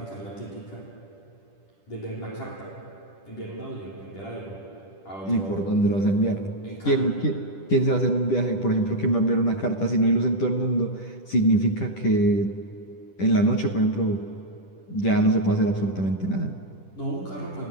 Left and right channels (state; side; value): late; right; 10 ms